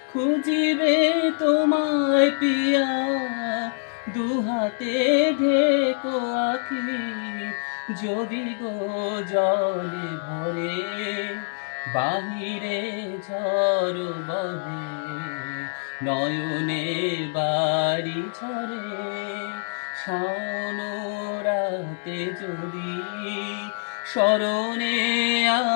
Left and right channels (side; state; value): right; silent; digital silence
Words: খুঁজিবে তোমায় পিয়া দুহাতে ঢেকো আখি। যদি গো জলে ভরে বাহিরে ঝড় বহে নয়নে বাড়ি ঝরে। শাওনরাতে যদি স্মরণে